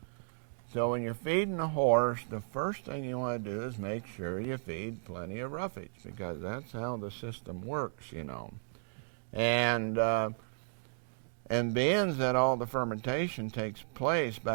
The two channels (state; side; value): silent; left; digital silence